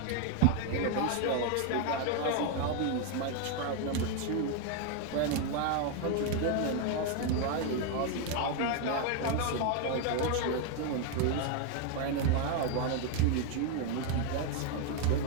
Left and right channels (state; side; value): different; both; correlation 0.01